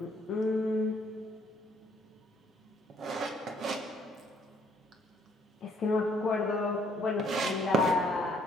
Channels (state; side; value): normal; both; correlation 0.65